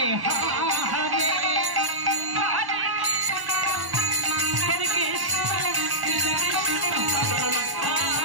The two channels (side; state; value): left; late; 1.1 ms